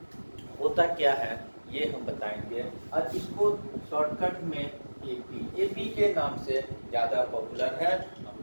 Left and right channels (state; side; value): inverted; both; correlation -1.00